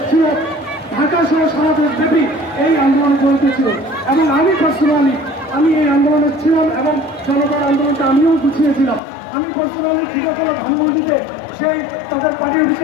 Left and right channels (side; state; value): right; drops out; at 9.0 s